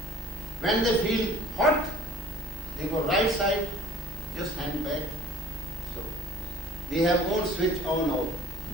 When they feel hot, they go right side, just hand back. So they have own switch on out.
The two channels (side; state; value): both; normal; correlation 0.50